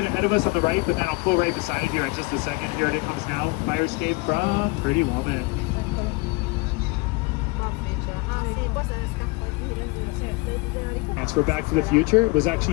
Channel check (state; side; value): quieter; right; 25.7 dB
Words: it ahead of us on the right, but then I'll pull right beside it here in just a second. Here it comes now. Fire escape from Pretty Woman. That's for Back to the Future. It was